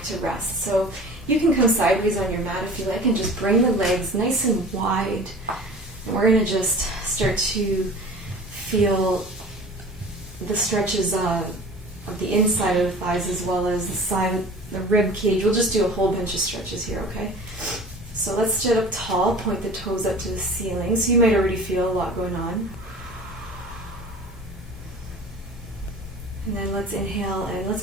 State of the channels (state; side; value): normal; both; correlation 0.41